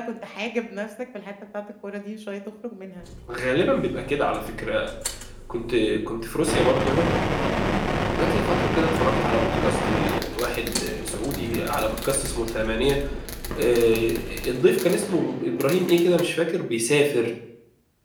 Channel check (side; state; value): both; identical; correlation 1.00